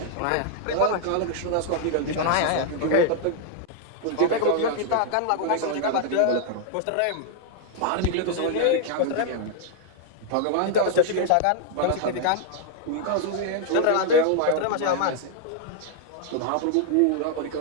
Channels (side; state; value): both; different; correlation 0.00